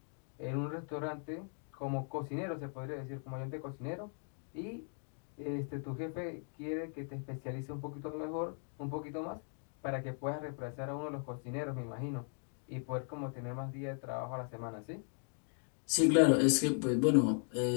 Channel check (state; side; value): silent; right; 52 dB below the other